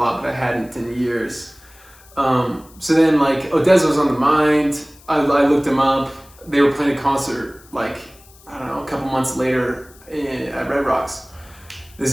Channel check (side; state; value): left; noise; hiss, 25 dB below the sound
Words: but I hadn't in years. So then Odessa was on the mind. I looked them up. They were playing a concert I don't know, a couple months later at Red Rocks. This